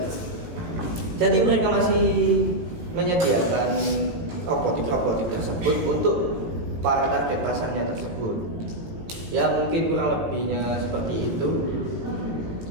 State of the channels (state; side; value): late; left; 18 ms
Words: Jadi mereka masih menyediakan robotik tersebut untuk para target pasarnya tersebut. Ya mungkin kurang lebihnya seperti itu.